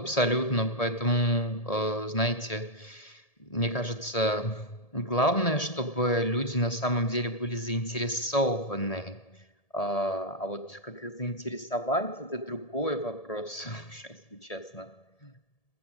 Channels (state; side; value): late; right; 1.7 ms